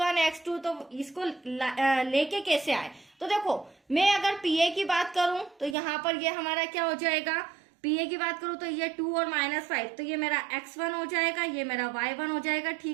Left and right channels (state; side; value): drops out; left; at 5.8 s